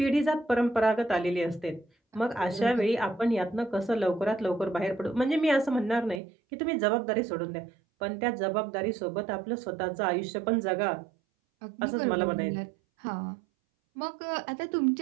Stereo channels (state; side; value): drops out; left; at 6.2 s